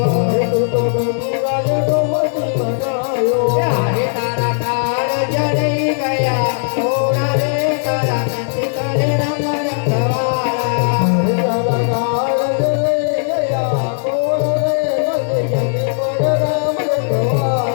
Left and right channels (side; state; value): right; silent; digital silence